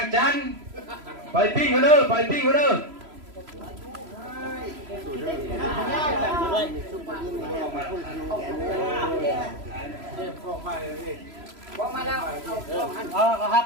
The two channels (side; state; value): left; late; 3.0 ms